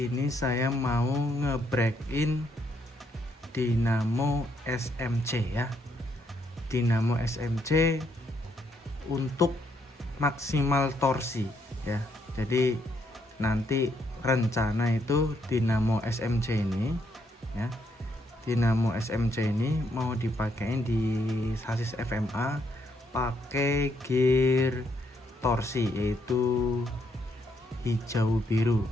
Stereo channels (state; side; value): normal; both; correlation 0.74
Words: saya mau nge-break-in Dynamo SMC ya. Dynamo SMC untuk maksimal torsi ya. Jadi nanti rencana itu Dynamo SMC ini ya. Dynamo SMC ini mau dipakein di sasis FMA pakai gear torsi yaitu hijau biru